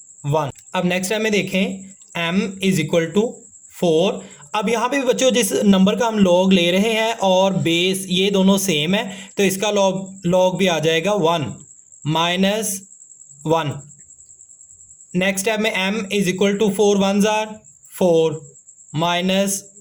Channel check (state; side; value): identical; both; correlation 1.00